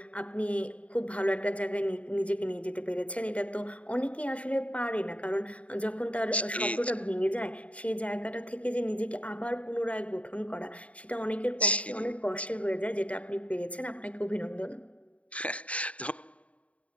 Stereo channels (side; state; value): right; late; 0.065 ms